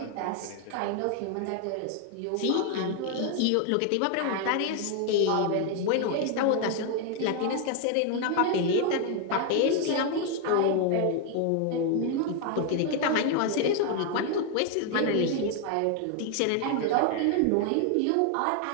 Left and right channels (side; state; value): both; different; correlation 0.00